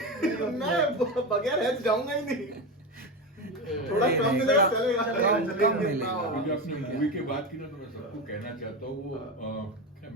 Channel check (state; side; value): normal; both; correlation 0.19